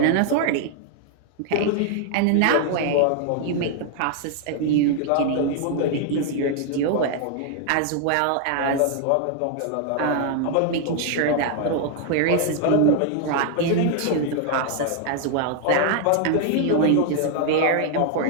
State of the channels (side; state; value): both; different; correlation 0.00